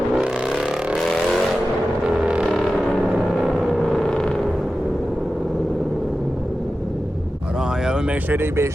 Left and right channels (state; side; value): normal; both; correlation 0.93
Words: Make sure they be